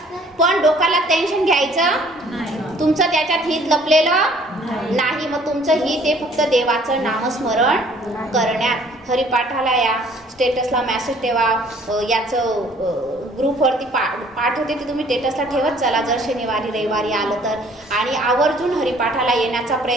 पण डोक्याला टेन्शन घ्यायचं, तुमचं त्याच्यात हित लपलेलं नाही. मग तुमचं हित हे फक्त देवाचं नामस्मरण करण्यात. हरिपाठाला या, स्टेटसला मेसेज ठेवा, याचं ग्रुपवरती पाठवते ते तुम्ही स्टेटसला ठेवत चला जर शनिवारी रविवारी आलं तर. आणि आवर्जून हरिपाठाला येण्याचा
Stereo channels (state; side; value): normal; both; correlation 0.57